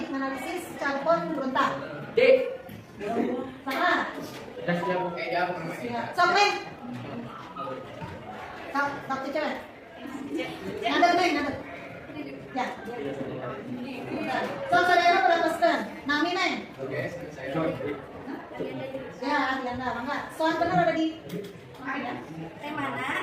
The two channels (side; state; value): both; identical; correlation 1.00